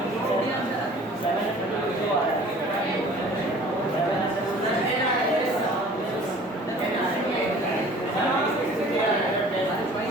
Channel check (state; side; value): normal; both; correlation 0.48